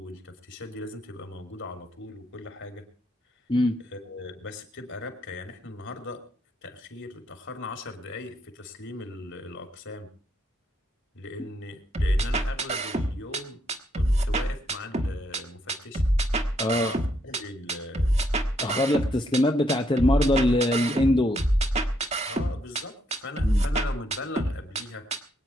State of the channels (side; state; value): both; normal; correlation 0.75